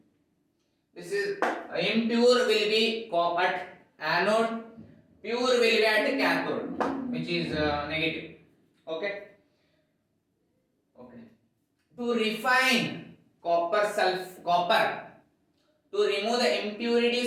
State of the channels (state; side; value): identical; both; correlation 1.00